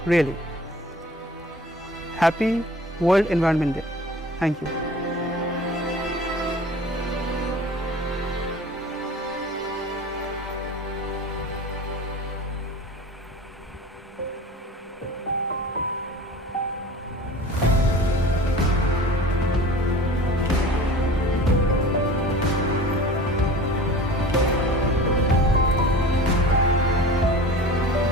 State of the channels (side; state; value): both; normal; correlation 0.40